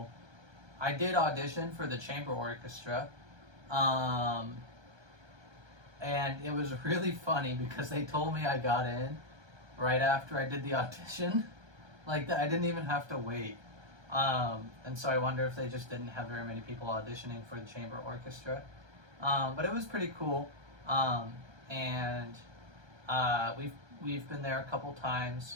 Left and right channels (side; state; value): left; late; 1.3 ms